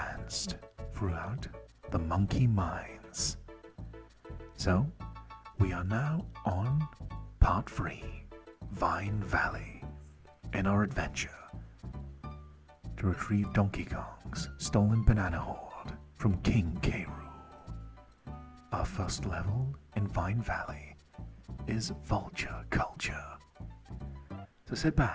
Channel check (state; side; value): identical; both; correlation 1.00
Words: throughout the monkey mines. So, we are now on part 3, Vine Valley, in our adventure to retrieve Donkey Kong's stolen banana hoard from King K. Rool. Our first level in Vine Valley is Vulture Culture. So sit